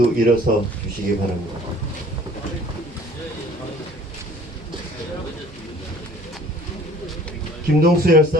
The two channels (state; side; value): normal; both; correlation 0.52